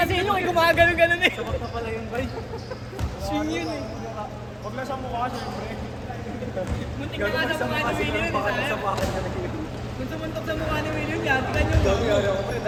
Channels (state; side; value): identical; both; correlation 1.00